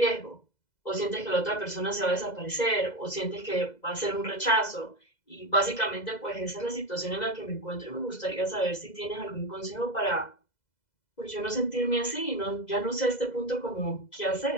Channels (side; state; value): right; late; 2.0 ms